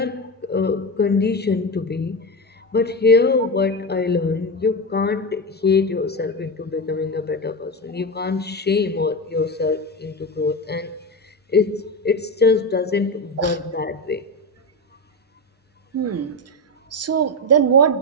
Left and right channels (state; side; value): normal; both; correlation 0.17